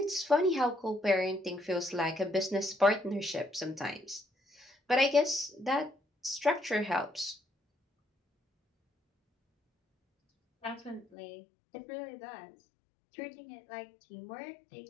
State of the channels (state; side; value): drops out; right; at 11.1 s